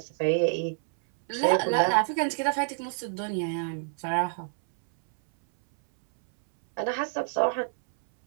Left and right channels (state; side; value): silent; left; 60 dB below the other